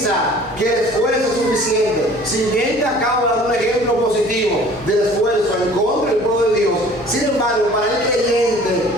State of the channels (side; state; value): right; noise; hum, 20 dB below the sound